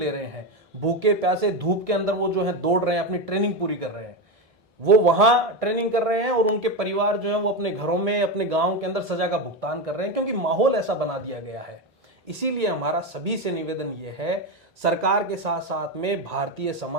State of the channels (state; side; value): normal; both; correlation 0.13